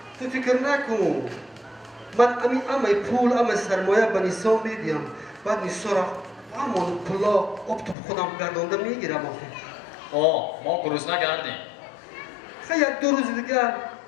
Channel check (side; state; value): right; drops out; at 8.0 s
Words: تو فکر نکن من اما پول اما سرمایه به نیسا میدیم بعد نیسا را همون پولا اب تو خودم گردانده میگیرم ما گروسنه کردیم خیلی یک دو روز دیگر